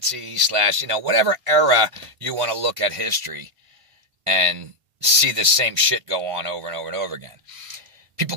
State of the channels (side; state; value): left; late; 1.5 ms